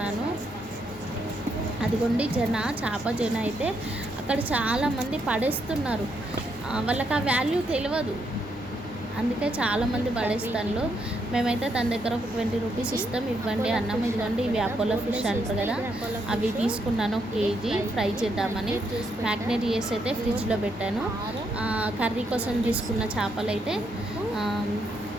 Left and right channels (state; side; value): normal; both; correlation 0.77